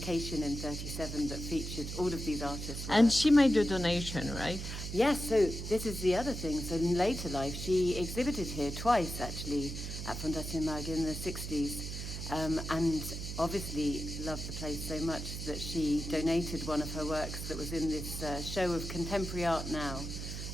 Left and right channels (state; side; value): noise; right; hum, 6 dB below the sound